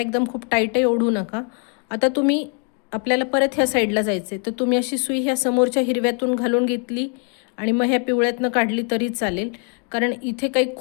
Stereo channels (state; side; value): quieter; right; 39.2 dB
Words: खूप टाईटही ओढू नका. आता तुम्ही आपल्याला परत ह्या साईडला जायचं आहे, तर तुम्ही अशी सुई ह्या समोरच्या हिरव्यातून घालून घेतली आणि मग ह्या पिवळ्यातनं काढली तरी चालेल, कारण इथे काही